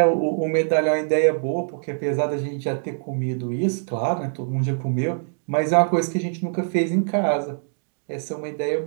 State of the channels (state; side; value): silent; left; digital silence